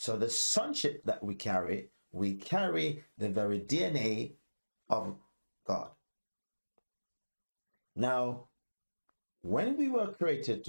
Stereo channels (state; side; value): inverted; both; correlation -1.00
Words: the sonship that we carry the very DNA of God. Now, when we were created